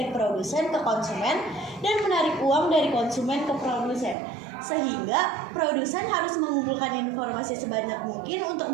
produsen ke konsumen dan menarik uang dari konsumen ke produsen. Sehingga produsen harus mengumpulkan informasi sebanyak mungkin untuk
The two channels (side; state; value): left; drops out; at 4.2 s